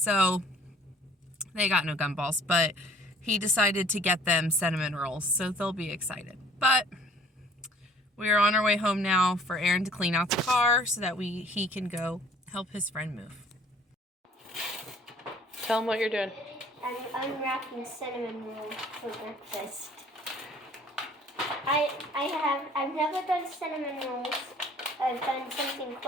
they got no gumballs, but he decided to get them cinnamon rolls, so they'll be excited. But we are on our way home now for Aaron to clean out the car so that he can go help his friend move. Tell him what you're doing. I'm unwrapping cinnamon rolls for breakfast. I've never done cinnamon rolls. I've done something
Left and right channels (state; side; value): normal; both; correlation 0.55